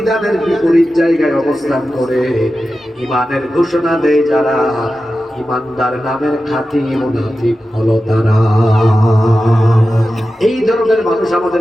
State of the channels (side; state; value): both; normal; correlation 0.93